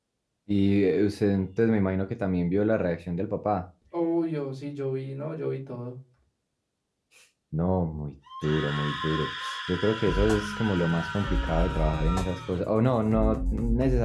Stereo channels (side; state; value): both; identical; correlation 1.00